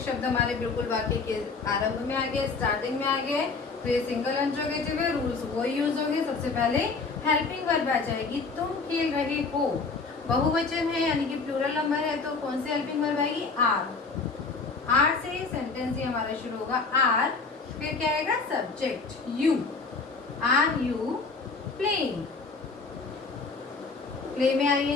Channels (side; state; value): right; quieter; 4.4 dB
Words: शब्द हमारे बिल्कुल वाक्य के आरंभ में आ गए, स्टार्टिंग में आ गए, तो ये सिंगल इंट्रोगेटिव है। रूल्स वो यूज होंगे। सबसे पहले हेल्पिंग वर्ब आ जाएगी, तुम खेल रहे हो, बहुवचन है यानी कि प्लूरल नंबर है, तो कौन सी हेल्पिंग वर्ब आएगी, आर। आर से सेंटेंस ही हमारा शुरू होगा, आर, फिर क्या आएगा subject you, are you playing, play में